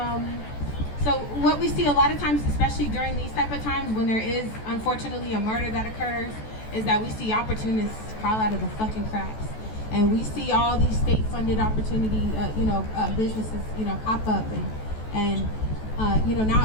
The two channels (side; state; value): right; late; 14 ms